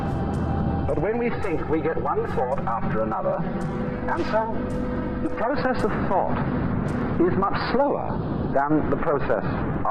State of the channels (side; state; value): both; identical; correlation 1.00